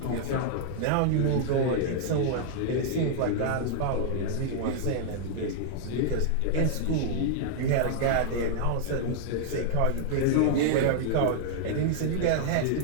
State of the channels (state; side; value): different; both; correlation -0.01